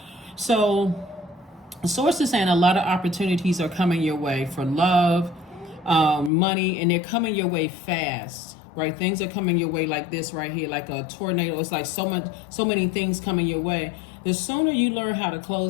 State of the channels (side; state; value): right; drops out; at 6.3 s